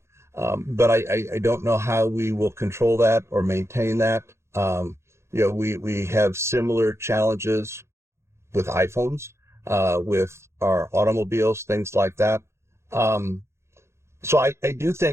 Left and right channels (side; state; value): left; late; 0.13 ms